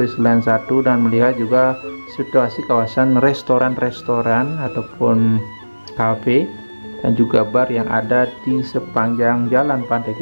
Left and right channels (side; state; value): both; inverted; correlation -1.00